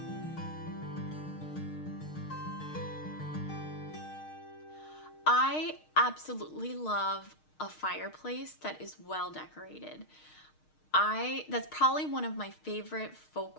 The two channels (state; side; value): late; right; 6.5 ms